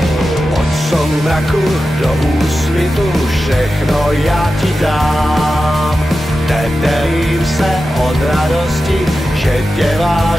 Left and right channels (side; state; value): both; normal; correlation 0.92